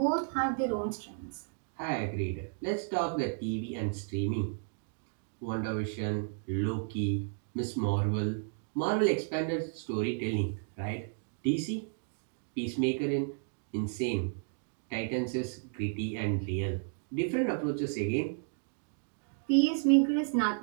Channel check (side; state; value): left; silent; digital silence